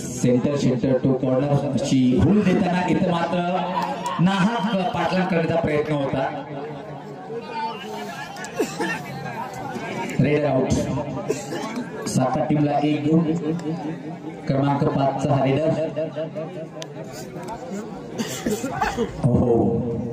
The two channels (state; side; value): identical; both; correlation 1.00